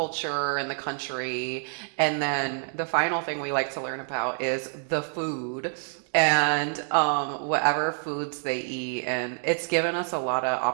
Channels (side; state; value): left; silent; 60 dB below the other